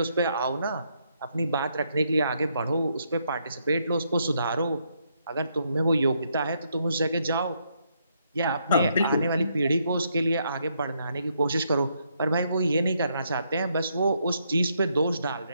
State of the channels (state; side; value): inverted; both; correlation -0.76